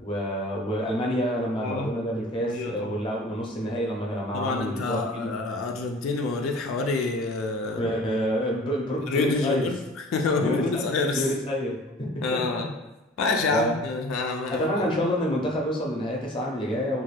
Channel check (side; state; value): both; normal; correlation 0.45